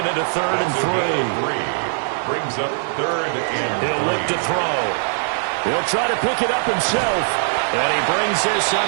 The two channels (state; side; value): silent; left; 63 dB below the other